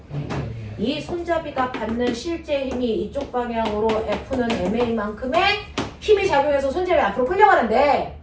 이 손잡이가 받는 실제 힘이 이쪽 방향으로 F는 MA만큼의 힘이 작용해서 손잡이 앞으로 끌려가는데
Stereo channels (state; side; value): identical; both; correlation 1.00